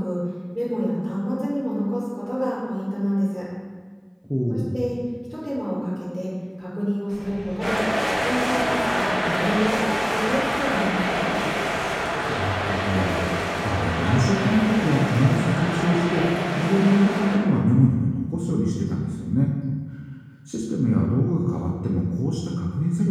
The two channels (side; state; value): both; identical; correlation 1.00